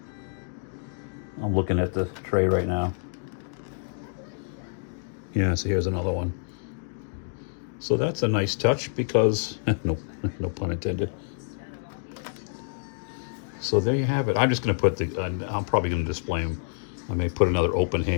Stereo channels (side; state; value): right; silent; digital silence